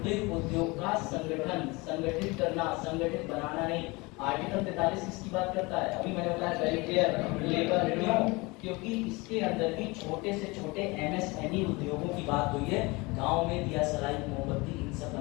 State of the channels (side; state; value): right; quieter; 25.0 dB